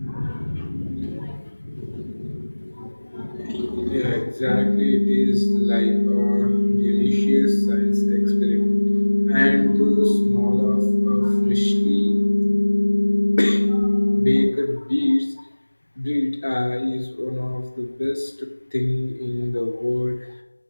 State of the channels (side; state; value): both; inverted; correlation -1.00